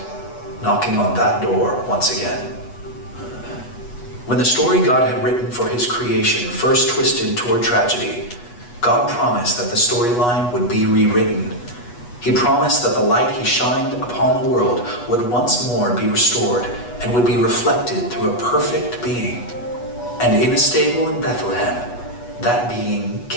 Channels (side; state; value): right; late; 8.2 ms